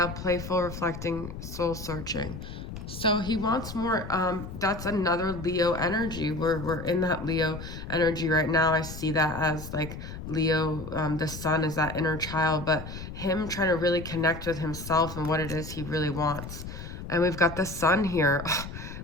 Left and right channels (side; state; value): left; noise; rumble, 10 dB below the sound